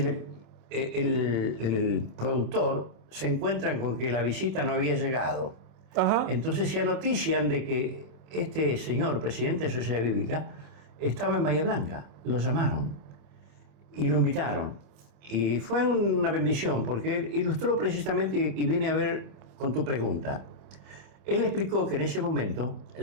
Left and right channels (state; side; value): late; left; 27 ms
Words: el productor se encuentra con que la visita no había llegado. Ajá. Entonces se anotician de que este señor, presidente de Sociedad Bíblica, estaba en Bahía Blanca, lo llamaron y lo invitaron. Y fue una bendición porque él ilustró precisamente, y vine a ver con tu pregunta. Él explicó que en ese momento